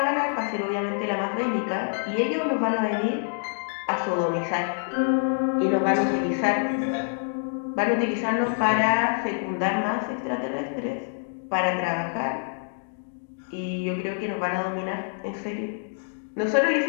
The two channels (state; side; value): silent; right; digital silence